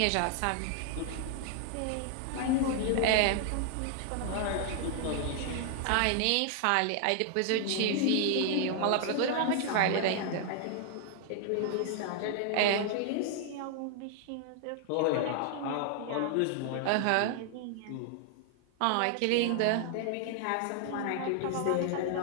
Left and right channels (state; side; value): different; both; correlation 0.00